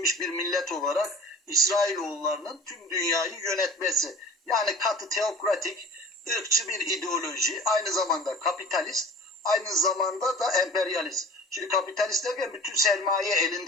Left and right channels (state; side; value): normal; both; correlation 0.41